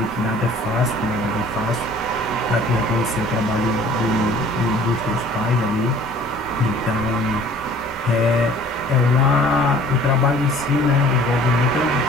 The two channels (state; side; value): normal; both; correlation 0.51